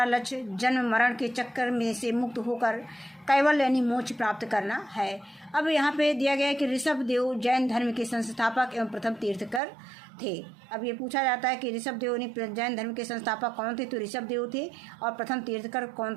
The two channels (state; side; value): drops out; left; at 9.6 s